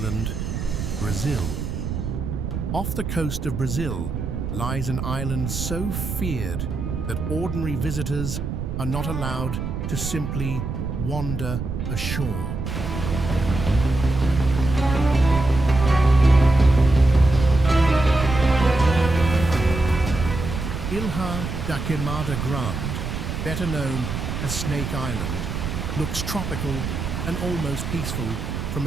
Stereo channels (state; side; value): noise; right; rumble, 4 dB below the sound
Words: Brazil. Off the coast of Brazil lies an island so feared that ordinary visitors are not allowed to simply wander ashore. Ilha da Queimada Grande, better known as Snake Island, looks tropical and almost peaceful from